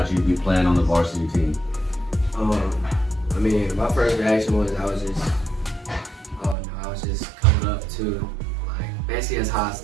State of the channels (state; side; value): drops out; left; at 6.6 s